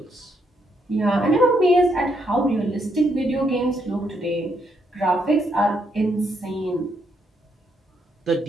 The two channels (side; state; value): both; normal; correlation 0.75